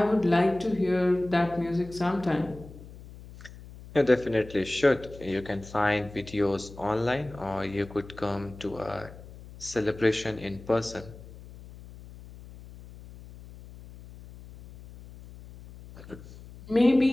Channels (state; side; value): noise; left; hum, 17 dB below the sound